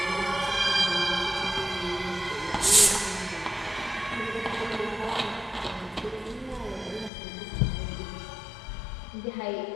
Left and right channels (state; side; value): drops out; right; at 7.1 s